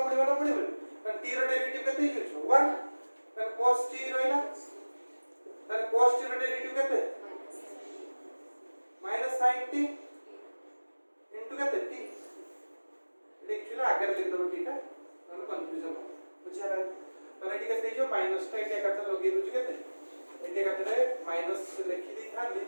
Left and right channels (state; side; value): inverted; both; correlation -1.00